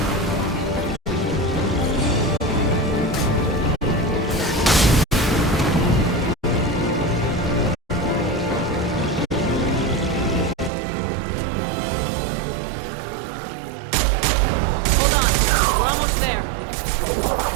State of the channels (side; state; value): left; drops out; at 10.7 s